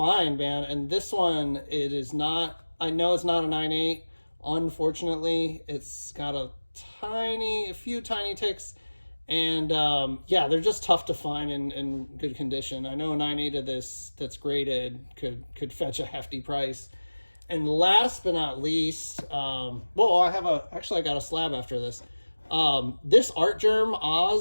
man. And this one, it is not, I know it's not a 9.8. Unfortunately, it's got a few tiny ticks. And yeah, they're just tough to find in good condition. I know a 9.8 of this that's graded could fetch a hefty price. And last but not least, well, I got a slab after this. This Artgerm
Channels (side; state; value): both; inverted; correlation -1.00